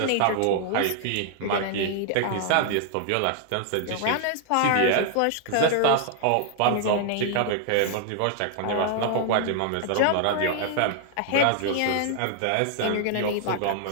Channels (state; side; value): different; both; correlation -0.01